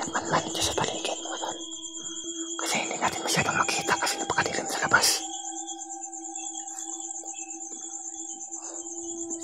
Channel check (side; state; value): both; identical; correlation 1.00